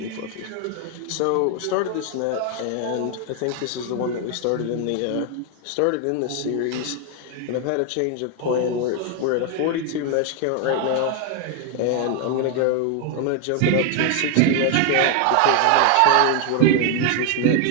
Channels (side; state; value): both; different; correlation 0.01